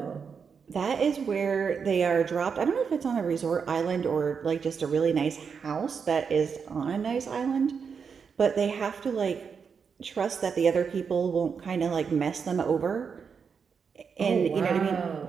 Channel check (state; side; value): quieter; left; 6.1 dB